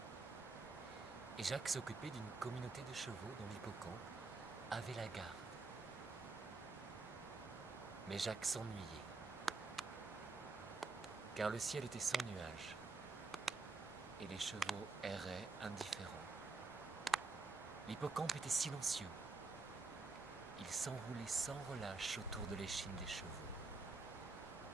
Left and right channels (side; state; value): left; quieter; 3.8 dB